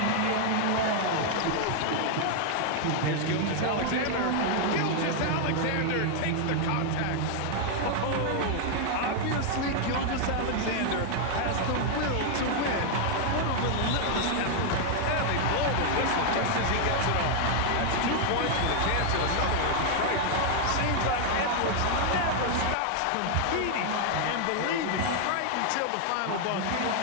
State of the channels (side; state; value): both; different; correlation 0.00